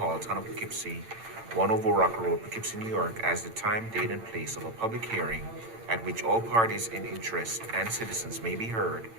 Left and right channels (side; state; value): left; late; 8.8 ms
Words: town of Poughkeepsie, 1 Over Rock Road, Poughkeepsie, New York, as the time, date, and place of a public hearing at which all parties in interest and citizens may be heard